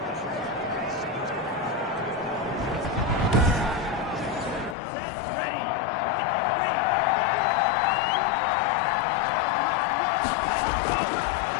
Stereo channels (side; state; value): right; drops out; at 4.8 s